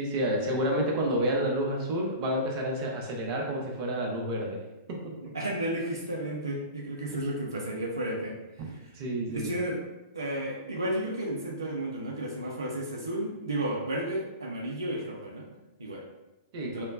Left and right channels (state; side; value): inverted; both; correlation -0.35